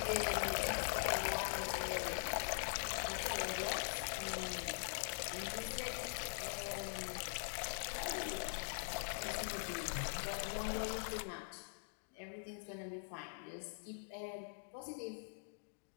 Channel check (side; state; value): right; silent; digital silence